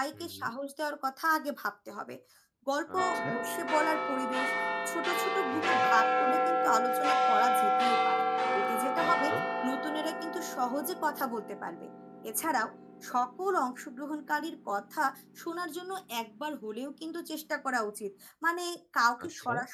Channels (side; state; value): both; identical; correlation 1.00